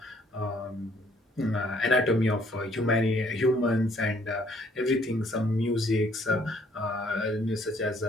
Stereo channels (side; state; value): both; normal; correlation 0.63